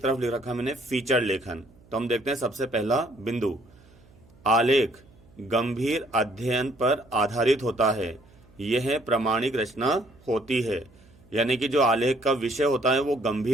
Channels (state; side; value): noise; right; hum, 27 dB below the sound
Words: तरफ लिख रखा है मैंने फीचर लेखन। तो हम देखते हैं सबसे पहला बिंदु। आलेख गंभीर अध्ययन पर आधारित होता है। यह प्रामाणिक रचना होती है, यानी कि जो आलेख का विषय होता है वो